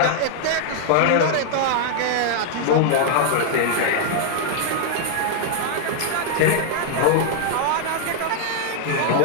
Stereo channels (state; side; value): different; both; correlation 0.00